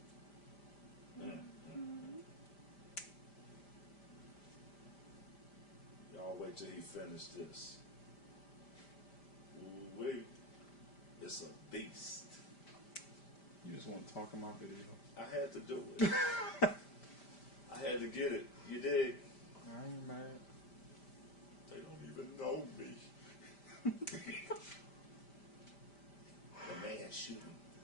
Y'all wait till he finishes this. Ooh wait. It's a beast. You just want to talk in my video. I had to do it. I had to get it. You dig? I ain't mad. They don't even know me. The man shooting.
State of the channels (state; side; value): late; right; 5.0 ms